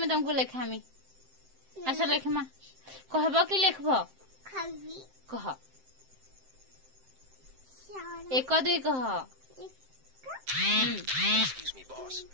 तुमको लेखामी आस लेखमा कहब कि लेखब कह एक दुई कह। Excuse me, boss.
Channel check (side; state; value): left; late; 7.7 ms